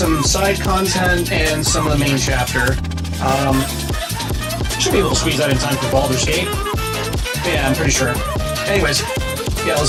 side content and some of the main chapter. Should be able to squeeze that in time for Baldur's Gate. Yeah, I'm pretty sure. Anyways, yeah,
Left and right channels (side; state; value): both; identical; correlation 1.00